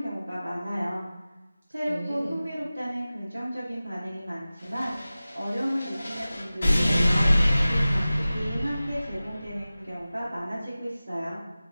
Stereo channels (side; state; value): both; inverted; correlation -0.97